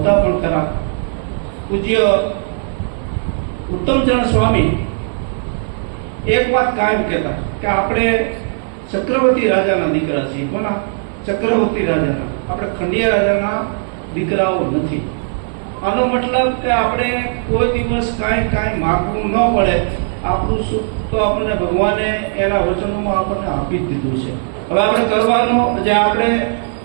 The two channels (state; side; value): silent; left; digital silence